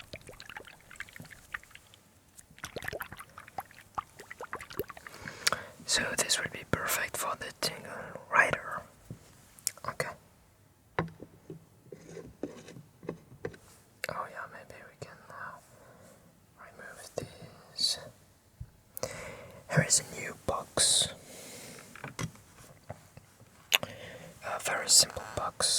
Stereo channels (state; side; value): identical; both; correlation 1.00